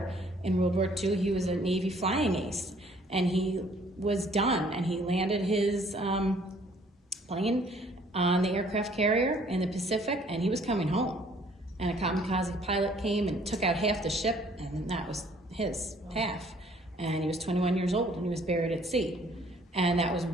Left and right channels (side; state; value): both; normal; correlation 0.59